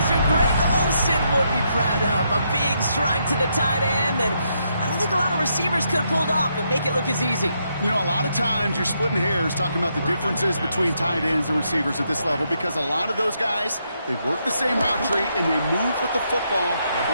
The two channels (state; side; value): inverted; both; correlation -0.78